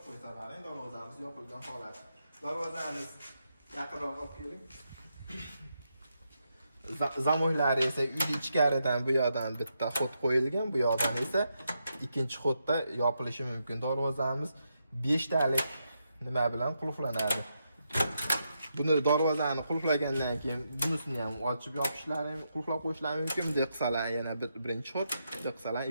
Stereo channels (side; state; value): both; inverted; correlation -0.83